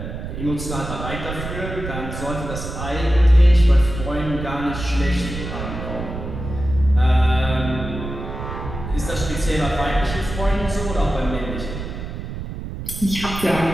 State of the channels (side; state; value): right; noise; rumble, 7 dB below the sound